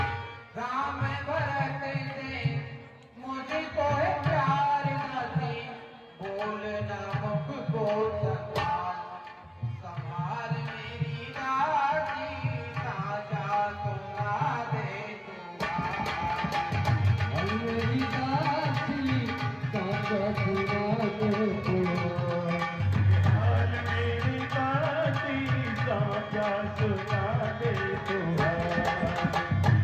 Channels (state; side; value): identical; both; correlation 1.00